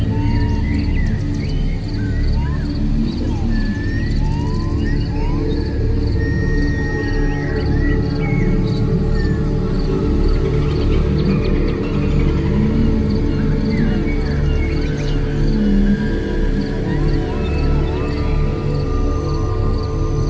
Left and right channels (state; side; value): identical; both; correlation 1.00